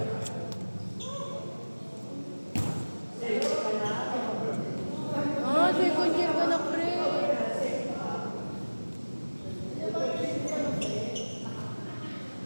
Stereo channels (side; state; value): both; inverted; correlation -1.00